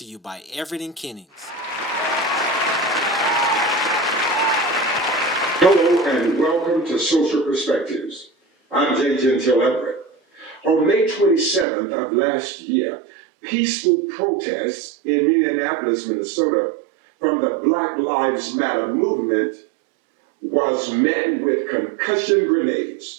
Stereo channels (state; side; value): drops out; left; at 11.7 s